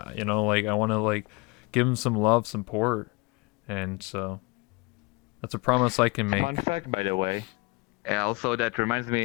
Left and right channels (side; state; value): right; quieter; 27.2 dB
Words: I want to like give them some love, support, and so that's a promise I can Fun make. fact, by the way. Also, that reminds